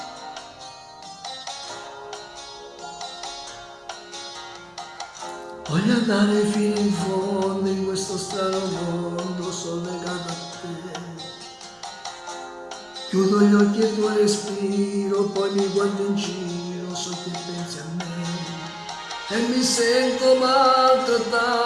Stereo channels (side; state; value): both; identical; correlation 1.00